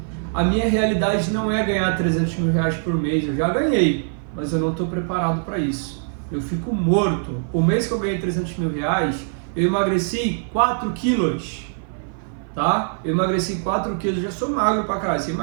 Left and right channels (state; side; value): silent; left; 55 dB below the other